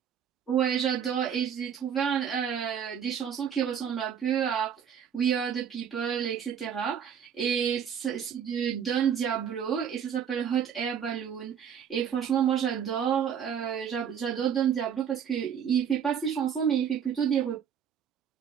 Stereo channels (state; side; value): quieter; left; 8.2 dB